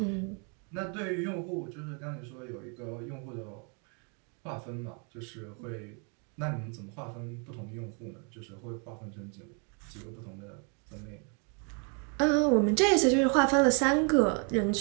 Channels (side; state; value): left; quieter; 38.2 dB